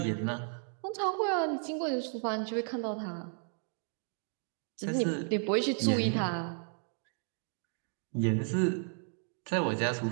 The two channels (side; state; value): left; silent; 55 dB below the other